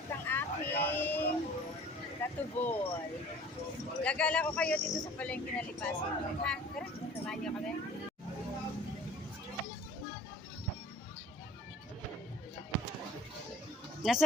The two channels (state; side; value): normal; both; correlation 0.47